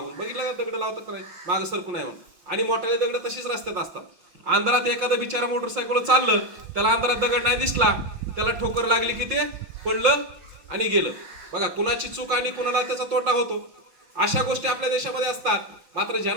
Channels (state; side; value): late; left; 5.7 ms